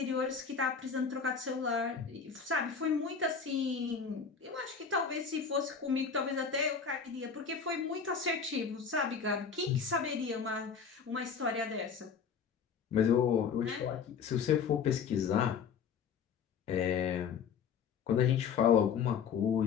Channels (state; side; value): quieter; right; 6.4 dB